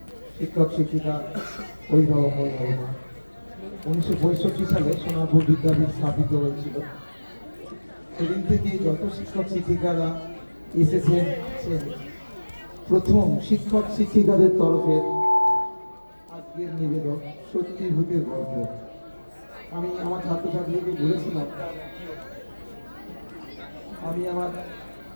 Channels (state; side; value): inverted; both; correlation -1.00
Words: শিক্ষক শিক্ষিকা, অভিভাবক অভিভাবক, 1965 সালে সোনারপুর বিদ্যাপীঠ স্থাপিত হয়েছিল। সেদিন থেকে যত শিক্ষক শিক্ষিকারা এসেছেন, প্রথম শিক্ষক শিক্ষিকাদের তরফে আজকের নিবেদন সত্যি ভূতের গল্প। আমি আমার ছাত্রছাত্রীকে